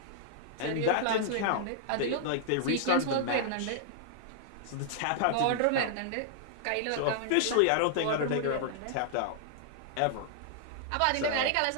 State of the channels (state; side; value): different; both; correlation -0.01